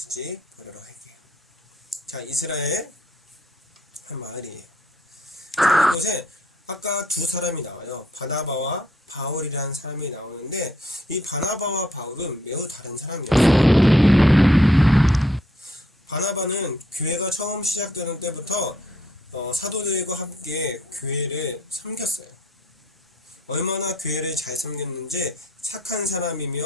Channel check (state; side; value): normal; both; correlation 0.68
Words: 보도록 할게요. 자, 이스라엘 한 마을이에요. 자, 이곳에 아까 두 사람이 나와요. 바나바와 바울이라는 사람이 나오는데 이 바나바와 바울은 매우 다른 사람이었어요. 바나바는 교회가 처음 시작되는 때부터 사도들과 함께 교회를 섬겼어요. 얼마나 교회를 잘 섬겼는지 착한